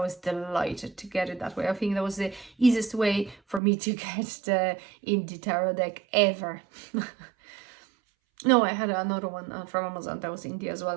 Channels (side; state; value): left; drops out; at 3.6 s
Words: delighted to get it that way. I think that was the easiest way for me to get the indie tarot deck ever. No, I had another one from Amazon that was indie as